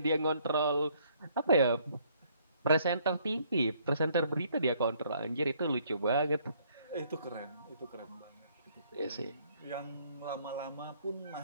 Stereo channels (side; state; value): both; inverted; correlation -0.65